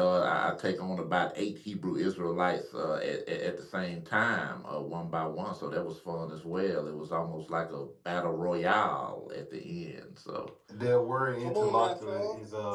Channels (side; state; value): both; identical; correlation 1.00